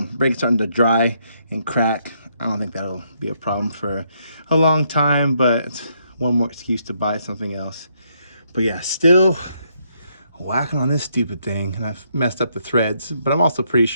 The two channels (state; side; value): inverted; both; correlation -0.74